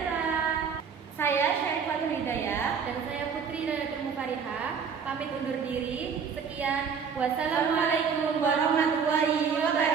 Saya Syarifatul Hidayah dan saya Putri Nayatul Mukarihah pamit undur diri. Sekian. Wassalamualaikum warahmatullahi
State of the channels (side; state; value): left; quieter; 6.4 dB